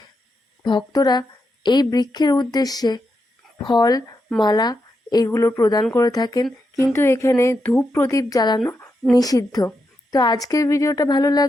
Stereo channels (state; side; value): normal; both; correlation 0.85